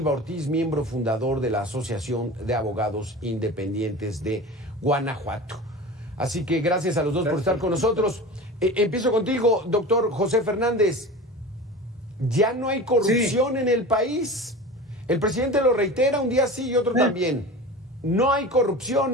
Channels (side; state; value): both; normal; correlation 0.33